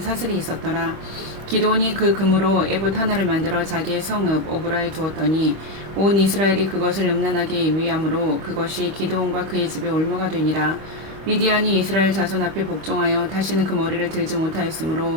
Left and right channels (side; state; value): left; late; 25 ms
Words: 사슬이 있었더라. 기드온이 그 금으로 에봇 하나를 만들어 자기의 성읍 오브라에 두었더니 온 이스라엘이 그것을 음란하게 위함으로 그것이 기드온과 그의 집에 올무가 되니라. 미디안이 이스라엘 자손 앞에 복종하여 다시는 그 머리를 들지